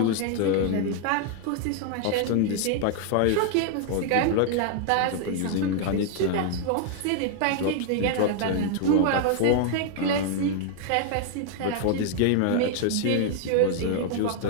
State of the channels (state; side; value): different; both; correlation 0.00